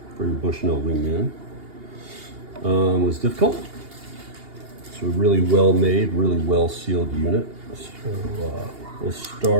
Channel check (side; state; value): left; late; 2.8 ms